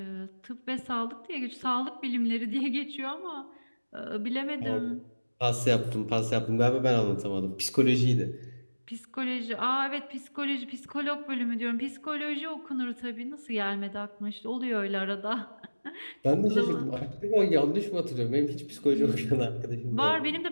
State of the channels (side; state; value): both; inverted; correlation -1.00